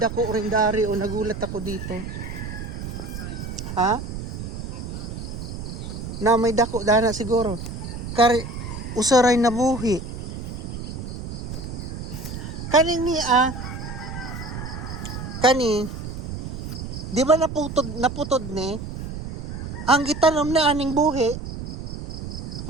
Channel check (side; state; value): right; noise; rumble, 7 dB below the sound